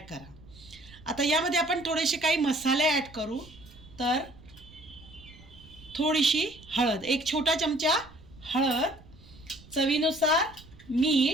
करा। आता यामध्ये आपण थोडेसे काही मसाले ॲड करू। तर थोडीशी हळद, एक छोटा चमचा हळद, चवीनुसार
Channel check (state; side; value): noise; right; rumble, 22 dB below the sound